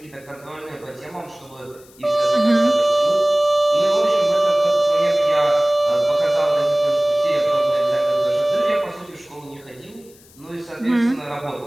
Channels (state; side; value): noise; left; hiss, 26 dB below the sound